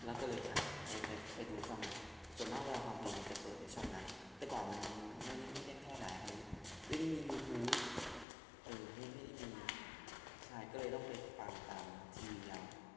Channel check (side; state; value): right; drops out; at 8.2 s